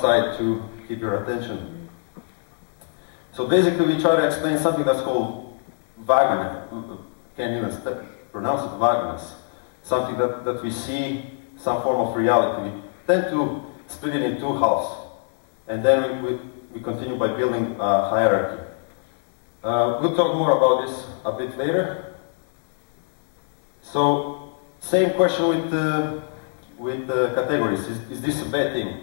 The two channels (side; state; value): right; silent; digital silence